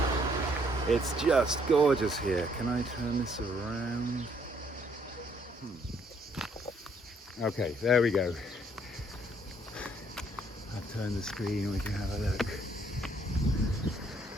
It's just gorgeous here. Can I turn this around? Okay, there we go. I'll turn the screen and we can have a look.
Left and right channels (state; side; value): normal; both; correlation 0.67